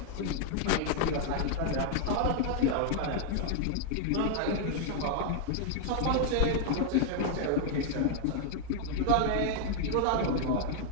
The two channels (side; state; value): both; different; correlation 0.00